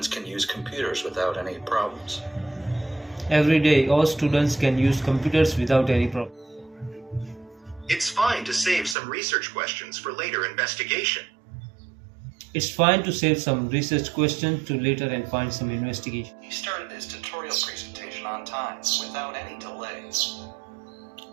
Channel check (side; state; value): left; drops out; at 9.0 s